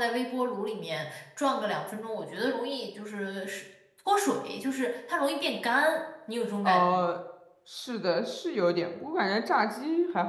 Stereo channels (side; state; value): both; identical; correlation 1.00